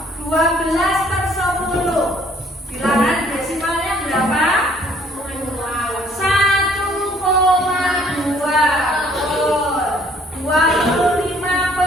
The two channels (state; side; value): normal; both; correlation 0.60